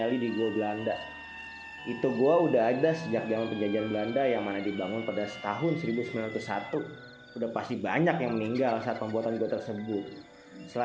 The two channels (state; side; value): identical; both; correlation 1.00